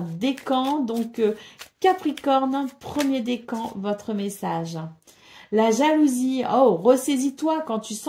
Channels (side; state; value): both; identical; correlation 1.00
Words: décan. Donc, Capricorne, premier décan, votre message. La jalousie, oh, ressaisis-toi quand tu